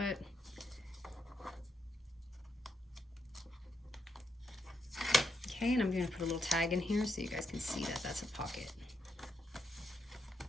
okay, and I'm gonna put a little tag in here so you guys can see that that's a pocket.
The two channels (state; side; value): normal; both; correlation 0.79